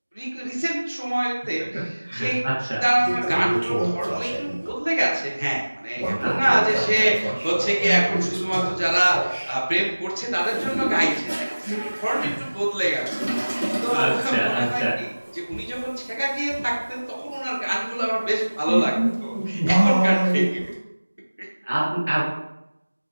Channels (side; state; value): both; inverted; correlation -1.00